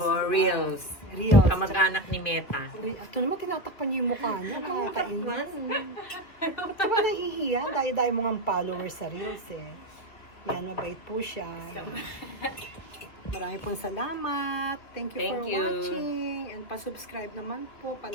vlog. Reels. Reels. Kamag-anak ni Meta. Ito naman, tinatakpan niyo yung mukha niya. Nakakainis. Ba't naman nahihiya? Dahil mo ng followers sa Reels eh. Yan, mabait po siya. Marami pong salamat. Thank you for Thank you. watching. And pa-subscribe naman po,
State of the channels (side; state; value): right; late; 2.3 ms